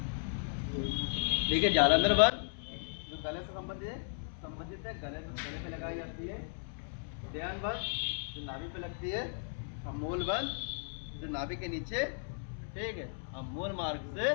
ठीक है, जालंधर बंद जो गले से संबंधित है, गले पे लगाई जाती है। ध्यान बंद जो नाभि पे लगती है। और मूल बंद जो नाभि के नीचे, ठीक है, और मूल मार्ग से,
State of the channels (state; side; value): silent; right; 54 dB below the other